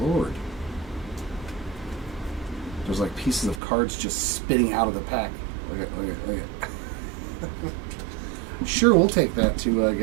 There's like pieces of cards just spitting out of the pack. Look at. Sure, we'll take that too, I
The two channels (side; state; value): left; drops out; at 3.6 s